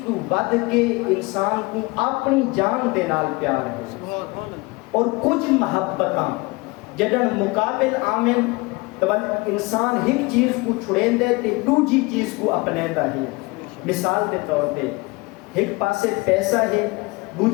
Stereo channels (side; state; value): right; quieter; 24.7 dB